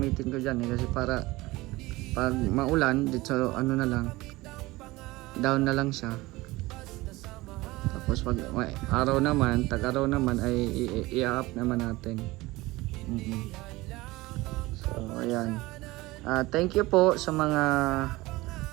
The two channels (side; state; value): left; quieter; 20.2 dB